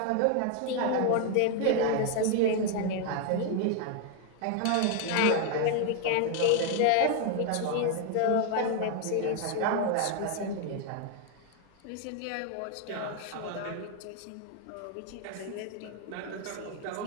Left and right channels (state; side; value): different; both; correlation 0.00